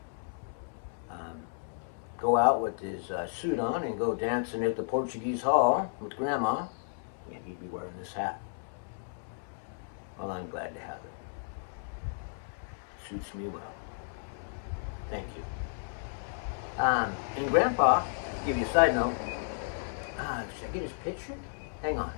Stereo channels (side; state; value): right; silent; 56 dB below the other